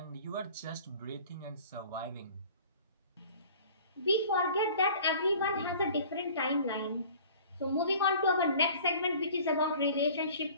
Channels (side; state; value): both; inverted; correlation -0.47